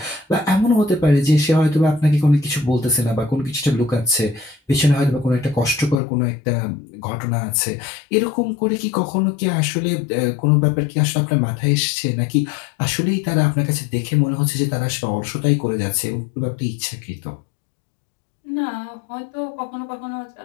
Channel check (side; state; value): right; drops out; at 6.0 s